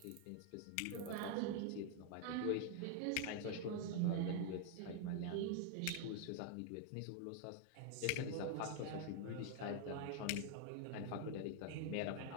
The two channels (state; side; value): different; both; correlation 0.00